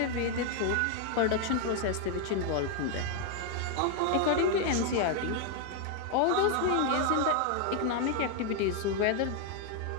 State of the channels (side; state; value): both; different; correlation 0.00